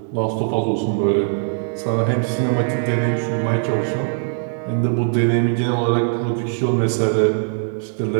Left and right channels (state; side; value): silent; left; digital silence